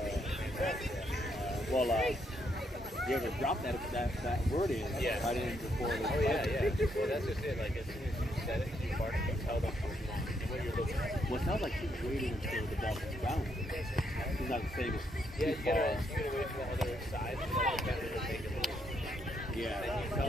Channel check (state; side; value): normal; both; correlation 0.75